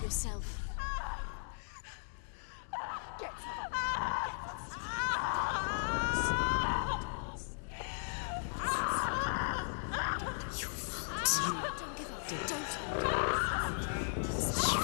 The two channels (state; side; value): silent; right; digital silence